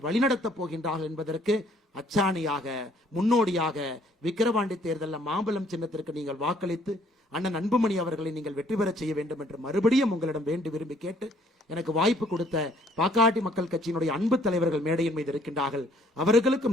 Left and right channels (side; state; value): both; normal; correlation 0.62